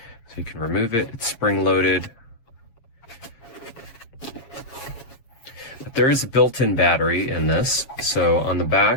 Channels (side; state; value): right; late; 7.2 ms